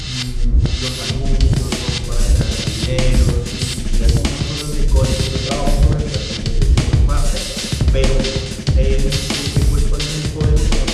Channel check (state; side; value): identical; both; correlation 1.00